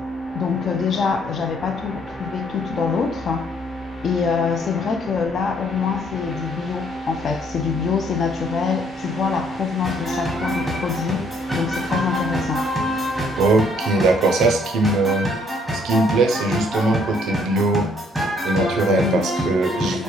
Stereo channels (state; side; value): normal; both; correlation 0.65